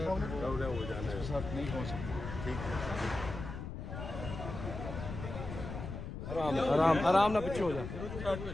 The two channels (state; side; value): noise; left; rumble, 7 dB below the sound